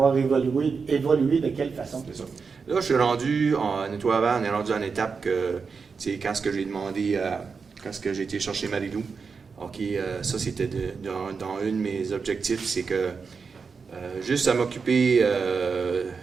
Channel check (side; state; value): left; quieter; 5.2 dB